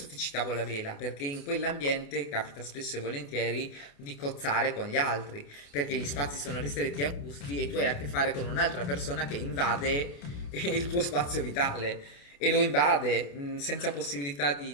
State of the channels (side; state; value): right; late; 28 ms